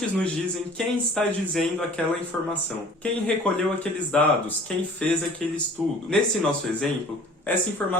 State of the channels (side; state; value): both; normal; correlation 0.48